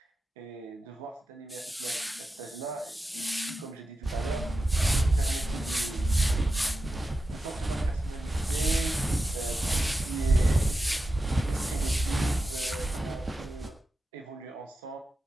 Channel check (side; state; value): both; normal; correlation 0.91